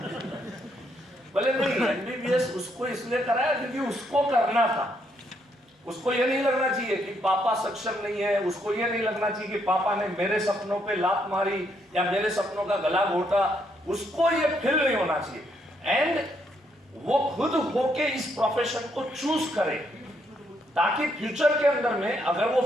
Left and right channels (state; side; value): normal; both; correlation 0.74